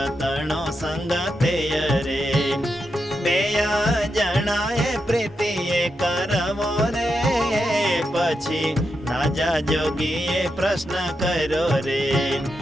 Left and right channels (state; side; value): normal; both; correlation 0.85